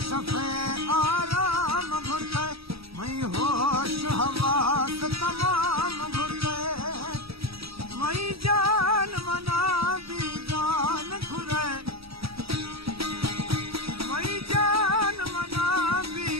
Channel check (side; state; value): left; late; 0.77 ms